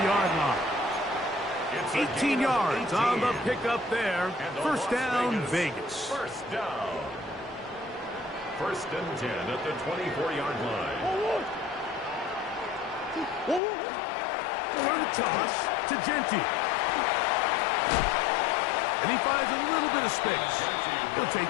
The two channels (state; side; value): drops out; right; at 13.6 s